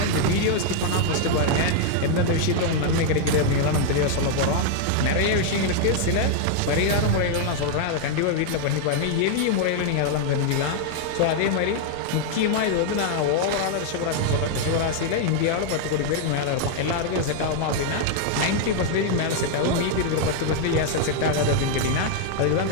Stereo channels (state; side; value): different; both; correlation 0.00